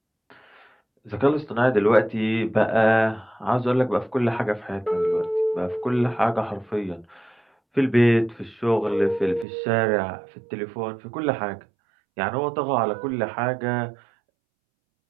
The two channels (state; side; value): drops out; left; at 9.5 s